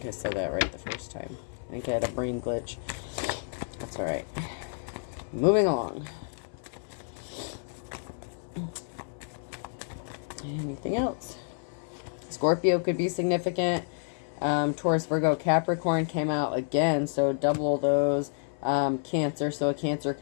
I said that right the first time. I think I had a brain glitch. All right. Moving along. Anything else? Scorpio could be significant. Taurus, Virgo, Capricorn came out again, so double those. Cancer, so a Cancer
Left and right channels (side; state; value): right; silent; 57 dB below the other